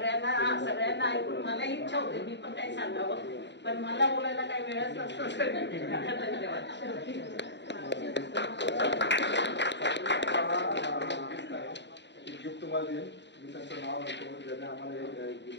ऐकून मला इच्छा होते मी पण काही सांगावं, पण मला बोलायला काही वेळच नसतो. धन्यवाद. गिफ्ट तुम्हाला देईन. मी त्यांचं नाव नव्हतं ज्याने आम्हाला हे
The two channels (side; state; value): right; late; 0.52 ms